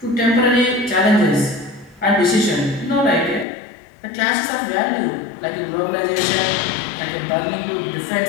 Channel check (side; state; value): right; drops out; at 3.5 s